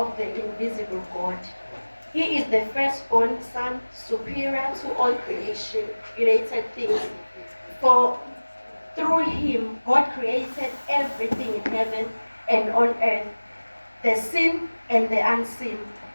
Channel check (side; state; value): both; inverted; correlation -1.00